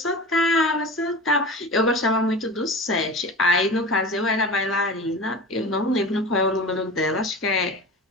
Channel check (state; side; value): normal; both; correlation 0.33